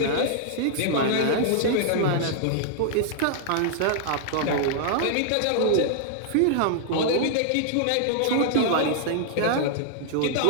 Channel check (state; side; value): different; both; correlation -0.01